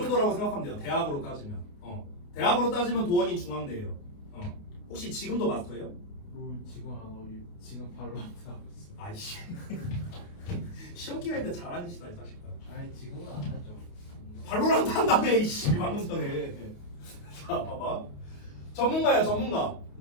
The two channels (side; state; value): right; late; 28 ms